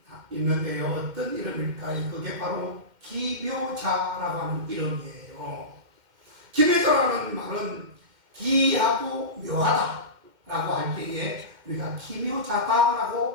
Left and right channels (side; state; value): left; late; 2.1 ms